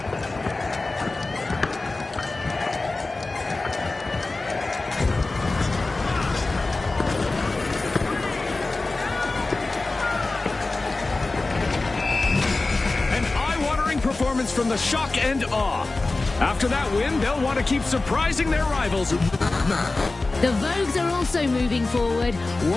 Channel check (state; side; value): quieter; right; 3.3 dB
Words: An eye-watering performance from the shock and awe. After that win, they'll want to keep surprising their rivals. The Vogues are also moving forward,